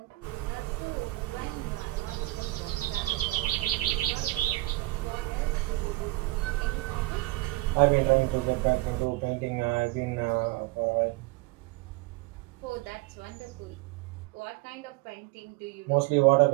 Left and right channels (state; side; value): quieter; left; 20.7 dB